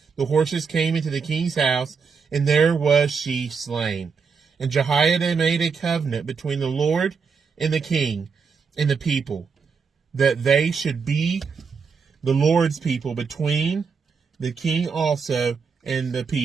the horses came into the king's house, and there was she slain. And Jehoiada made a covenant between the Lord and the king and the people, that they should be the Lord's people, between the king also and the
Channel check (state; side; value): quieter; left; 5.5 dB